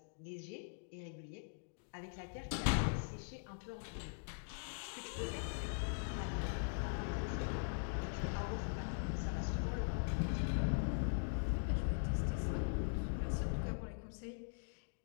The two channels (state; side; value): silent; right; digital silence